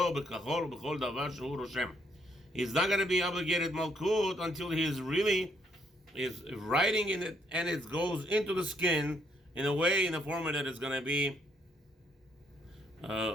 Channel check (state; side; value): normal; both; correlation 0.71